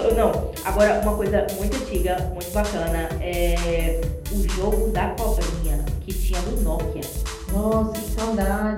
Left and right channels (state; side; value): identical; both; correlation 1.00